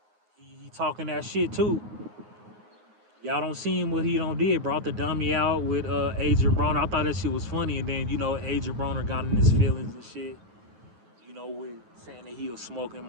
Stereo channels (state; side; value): late; left; 9.5 ms